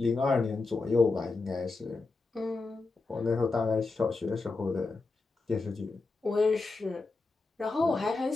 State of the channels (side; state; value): right; quieter; 3.7 dB